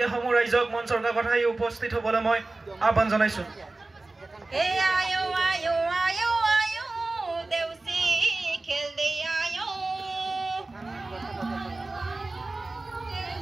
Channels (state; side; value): quieter; left; 3.1 dB